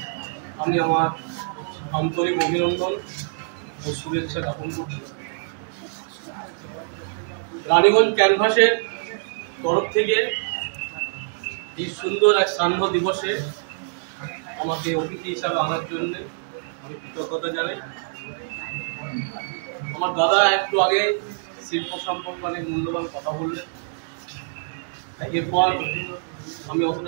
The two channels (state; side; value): silent; left; digital silence